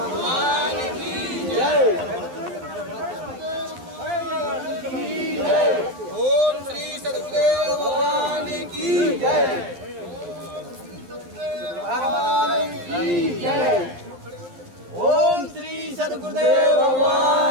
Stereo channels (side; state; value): left; late; 12 ms